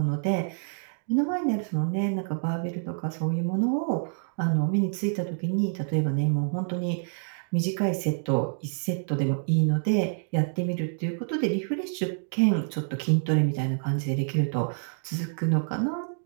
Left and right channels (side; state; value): left; silent; digital silence